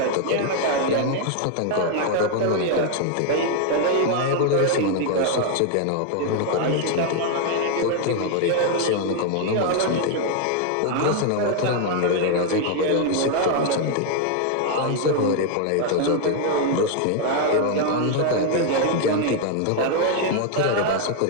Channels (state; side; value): different; both; correlation 0.00